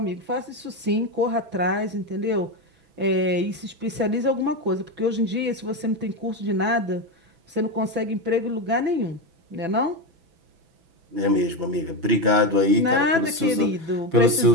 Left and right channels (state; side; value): late; left; 6.0 ms